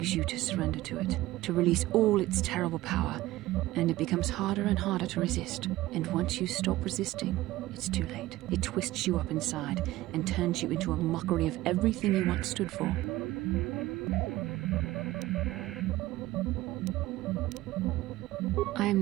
you to surrender to it, to release all its terrible power, and it becomes harder and harder to resist. And once you stop resisting, it's too late. It twists you up inside and turns you into a mockery of everything you once stood for. I am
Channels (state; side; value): quieter; left; 17.1 dB